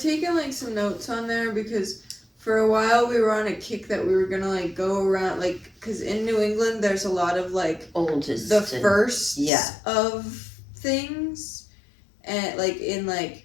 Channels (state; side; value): drops out; right; at 9.5 s